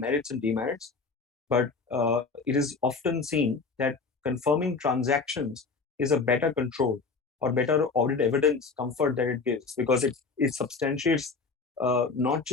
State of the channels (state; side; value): quieter; right; 4.5 dB